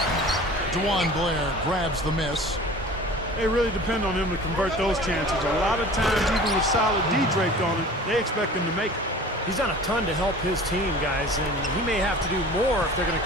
DeJuan Blair grabs the miss. They really depend on him to convert those chances. A lot of times, even with solid D draped on it, they expect him to make it. He's done a ton to help his team, guys, and he may have to do more if they're going to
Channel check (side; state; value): both; normal; correlation 0.42